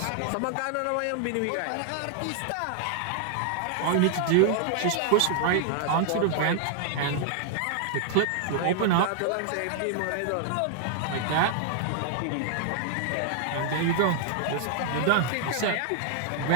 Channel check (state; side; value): different; both; correlation -0.01